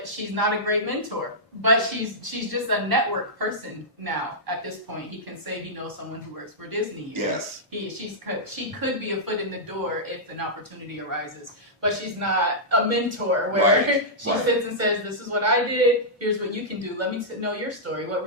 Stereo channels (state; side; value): normal; both; correlation -0.11